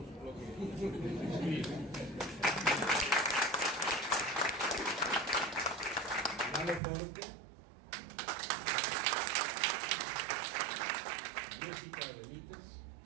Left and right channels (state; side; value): drops out; left; at 6.8 s